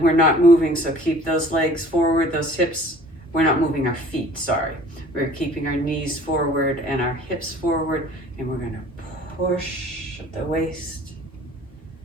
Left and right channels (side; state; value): both; normal; correlation 0.50